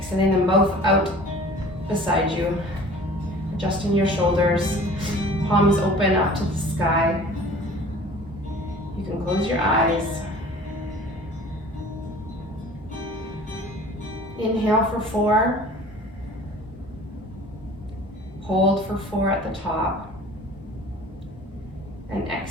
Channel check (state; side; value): normal; both; correlation 0.46